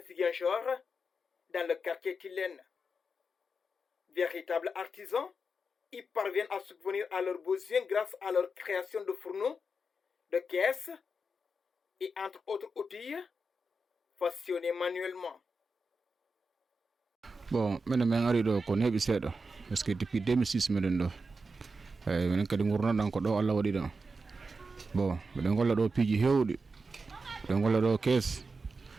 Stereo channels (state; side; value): normal; both; correlation 0.89